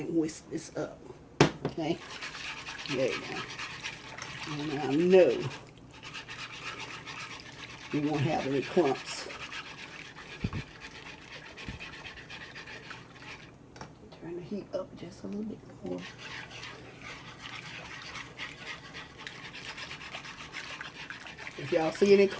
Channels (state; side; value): identical; both; correlation 1.00